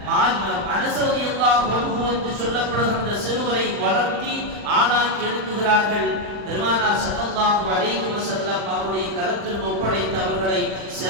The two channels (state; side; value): late; left; 40 ms